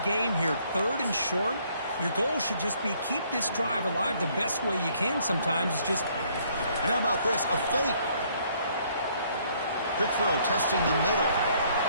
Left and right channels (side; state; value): both; inverted; correlation -0.65